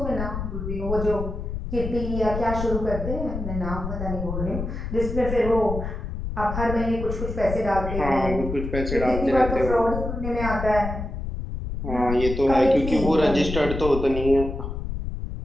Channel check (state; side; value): noise; left; rumble, 5 dB below the sound